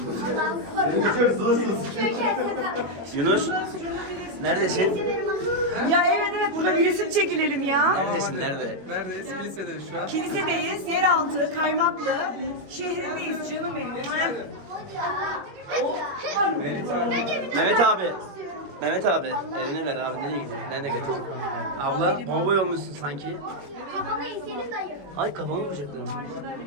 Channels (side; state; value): left; late; 21 ms